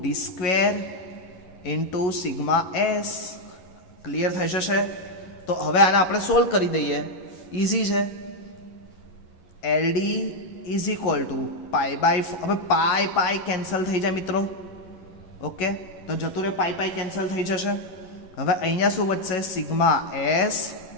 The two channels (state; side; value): late; right; 11 ms